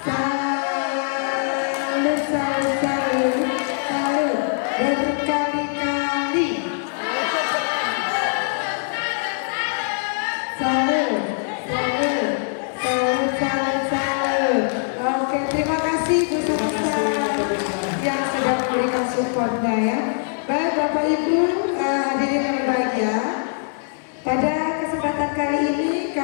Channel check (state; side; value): silent; right; 64 dB below the other